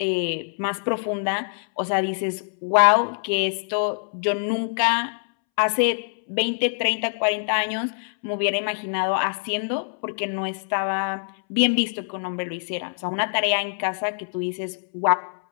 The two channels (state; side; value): silent; right; 62 dB below the other